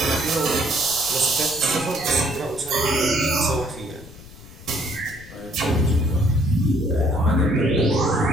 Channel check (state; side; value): noise; left; rumble, 18 dB below the sound